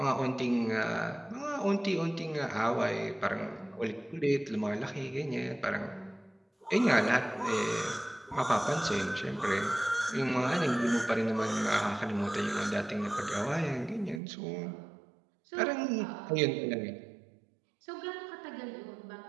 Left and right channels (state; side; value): drops out; left; at 14.2 s